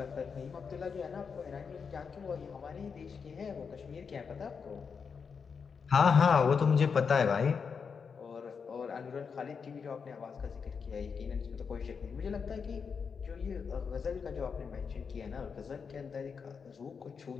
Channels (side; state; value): right; quieter; 5.9 dB